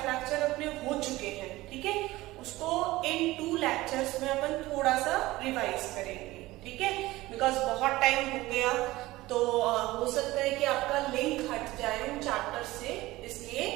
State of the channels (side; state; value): left; quieter; 18.5 dB